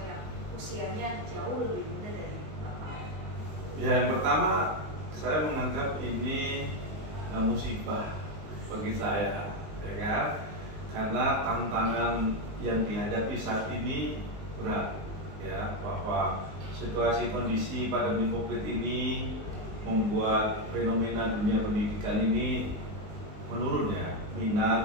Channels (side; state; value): left; late; 19 ms